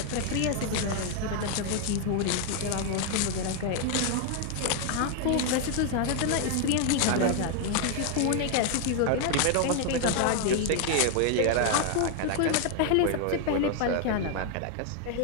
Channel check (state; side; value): different; both; correlation 0.00